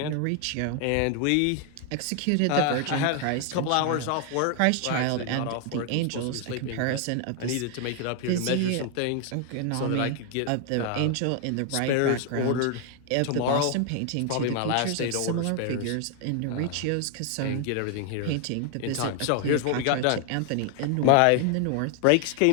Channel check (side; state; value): both; different; correlation 0.00